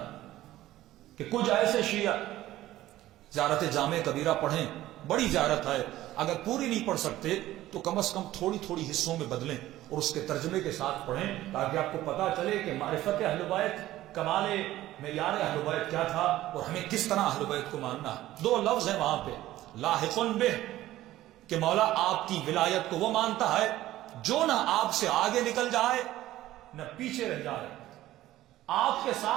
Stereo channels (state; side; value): quieter; left; 15.0 dB